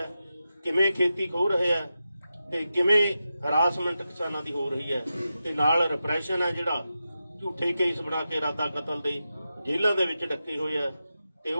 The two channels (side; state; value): both; inverted; correlation -0.90